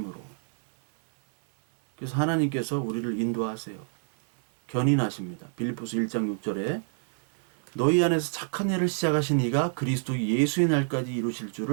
그래서 하나님께서 우리를 인도하세요. 견인하십니다. 빌립보서 1장 6절에 너희 안에서 착한 일을 시작하신 이가 그리스도 예수의 날까지 이루실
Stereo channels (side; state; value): left; silent; digital silence